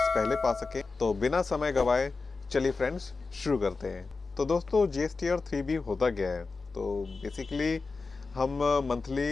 पहले पा सकें। तो बिना समय गवाए चलिए फ्रेंड्स शुरू करते हैं। तो दोस्तों, GSTR 3B होता क्या है? तो बेसिकली हम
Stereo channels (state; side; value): quieter; right; 4.1 dB